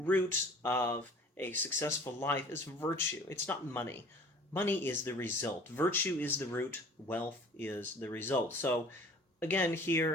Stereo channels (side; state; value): both; normal; correlation 0.48